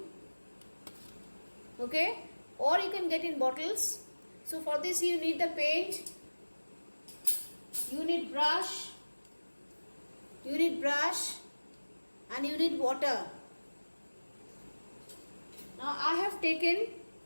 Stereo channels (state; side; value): inverted; both; correlation -1.00